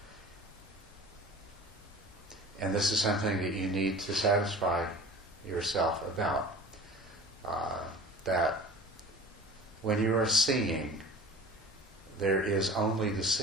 And this is something that you need to satisfy yourself about. That when you are seeing, there is only the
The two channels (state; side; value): normal; both; correlation 0.39